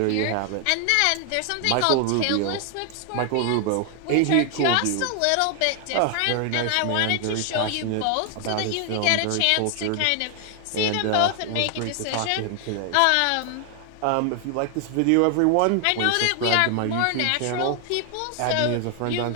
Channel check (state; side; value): different; both; correlation 0.00